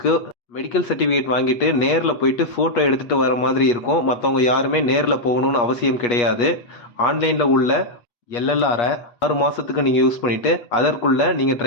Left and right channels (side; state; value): right; late; 8.4 ms